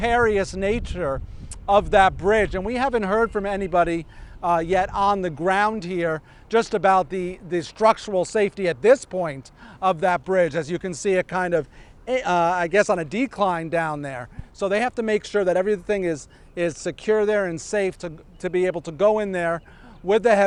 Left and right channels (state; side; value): identical; both; correlation 1.00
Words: nature of that bridge, and we haven't heard from anybody yet on the ground here just about the structural safety at this point of that bridge. As you can see, it kind of I guess on a decline down there, so they have to make sure that everything is secure there and safe to be able to go in there with the